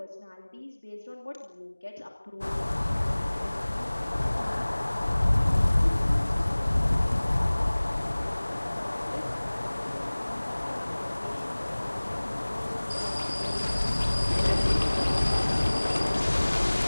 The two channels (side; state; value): both; inverted; correlation -1.00